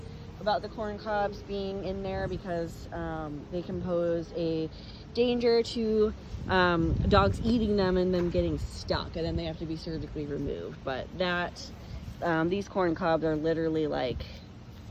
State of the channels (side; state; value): both; identical; correlation 1.00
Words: about the corn cobs being in there because they can pose a danger to dogs eating them and them getting stuck, and then they have to be surgically removed. But these corn cobs are literally like